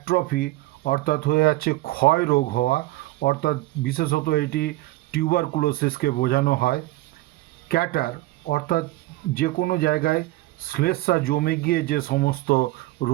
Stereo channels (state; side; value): quieter; left; 18.2 dB